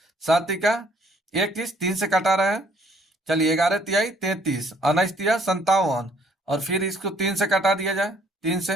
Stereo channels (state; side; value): normal; both; correlation 0.63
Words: 7 तिका 21, 3 से कटा रहा है। चलिए 11 तिहाई 33, 19 तिया 57, और फिर इसको 3 से कटा दिया जाए, 3 से,